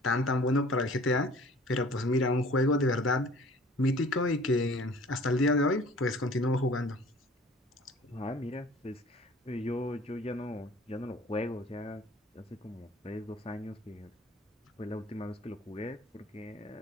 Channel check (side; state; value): both; normal; correlation 0.49